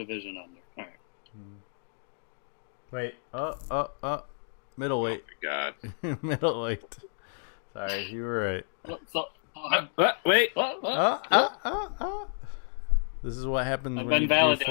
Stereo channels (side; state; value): right; silent; digital silence